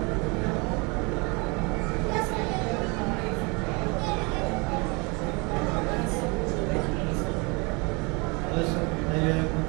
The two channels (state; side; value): quieter; left; 29.2 dB